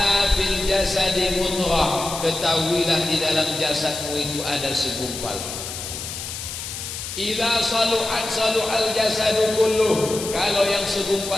fil jasadi mudghah, ketahuilah di dalam jasadmu itu ada segumpal. Idza saluhat saluhal jasadu kulluh, kalau yang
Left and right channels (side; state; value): left; noise; hiss, 7 dB below the sound